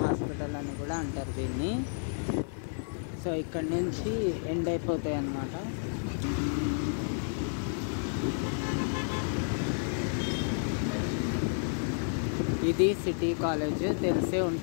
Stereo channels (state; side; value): silent; right; 57 dB below the other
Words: హాస్పిటల్ అని కూడా అంటారు దీన్ని. సో ఇక్కడ నుంచి ఎండ్ అయిపోతాయి అన్నమాట. ఇది సిటీ కాలేజ్, తెలిసే